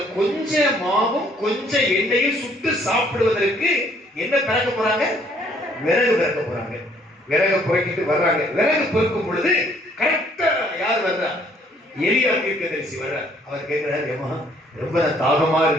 கொஞ்சம் மாவும் கொஞ்சம் எண்ணெயும் சுட்டு சாப்பிடுவதற்கு என்ன பிறக்க போறாங்க? விறகு பிறக்க போறாங்க. விறகு புறக்கிட்டு வர்றாங்க. விறகு பொறுக்கும் பொழுது கரெக்டா யார் வர்றா? எலியா தீர்க்கதரிசி வர்ற. அவர் கேட்கிறாரு, ஏமா ரொம்ப தாகமா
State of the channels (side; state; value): both; normal; correlation 0.63